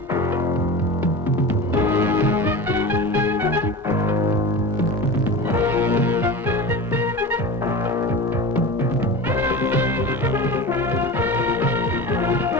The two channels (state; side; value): normal; both; correlation 0.30